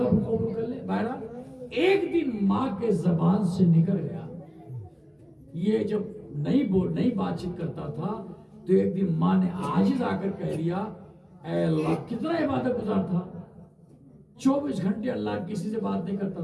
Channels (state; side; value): identical; both; correlation 1.00